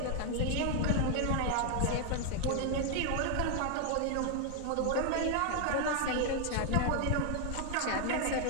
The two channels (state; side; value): different; both; correlation 0.00